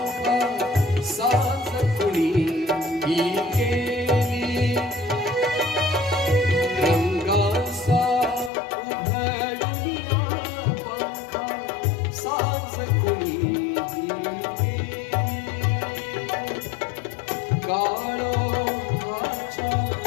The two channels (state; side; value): drops out; right; at 8.5 s